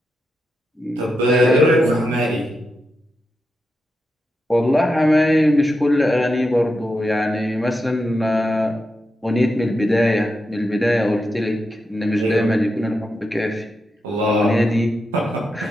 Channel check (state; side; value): normal; both; correlation 0.87